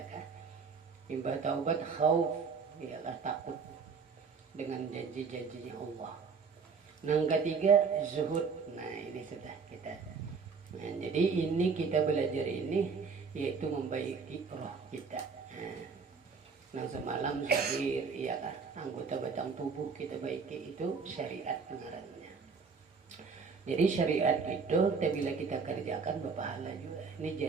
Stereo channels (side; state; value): left; quieter; 5.3 dB